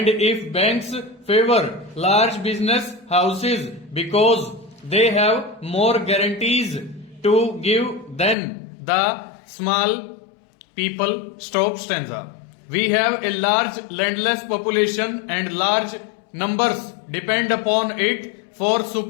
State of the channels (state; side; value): drops out; right; at 8.3 s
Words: if banks favor large business houses because they have more guarantees to give than the small people. Stop. Stanza. We have a large landless population and large numbers depend upon it for